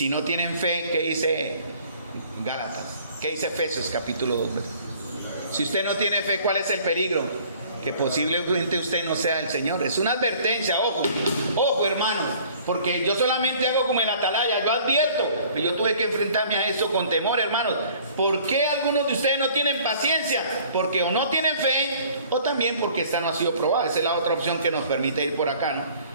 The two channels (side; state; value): both; inverted; correlation -0.53